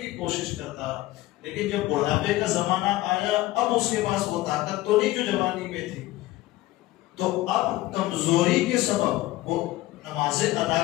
کوشش کرتا، لیکن جب بڑھاپے کا زمانہ آیا اب اس کے پاس وہ طاقت تو نہیں جو جوانی میں تھی، تو اب کمزوری کے سبب وہ نمازیں ادا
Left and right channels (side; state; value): right; quieter; 17.3 dB